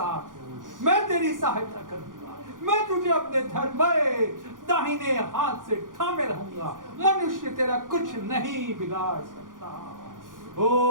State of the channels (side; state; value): left; late; 0.89 ms